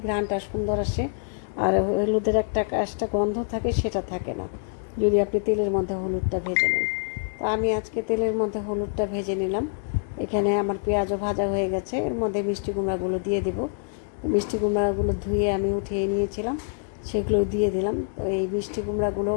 ঘ্রাণটা সুন্দর আসে, আর হলুদের একটা কাজটা গন্ধ থাকে, সেটা থাকে না যদি আপনি তেলের মধ্যে হলুদটা ভেজে নেন। তো আমি আজকে তেলের মধ্যে হলুদটা ভেজে নিলাম। এখানে আমার পেঁয়াজও ভাজা হয়ে গেছে, এর মধ্যে মিষ্টি কুমড়াগুলো দিয়ে দেব। তো মিষ্টি কুমড়াগুলো ধুয়ে আমি উঠিয়ে নিয়েছিলাম, সেগুলো দিয়ে দিলাম। তো এই মিষ্টি কুমড়াগুলো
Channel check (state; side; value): silent; right; digital silence